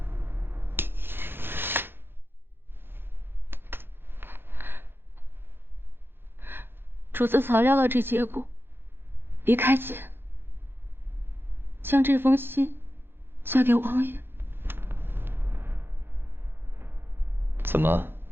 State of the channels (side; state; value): left; late; 0.10 ms